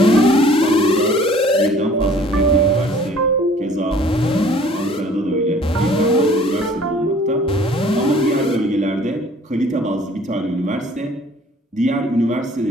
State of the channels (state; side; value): normal; both; correlation 0.53